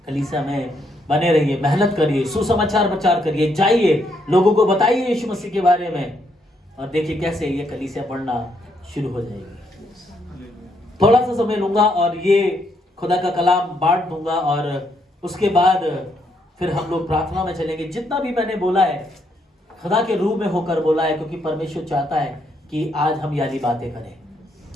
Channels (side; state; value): both; normal; correlation 0.75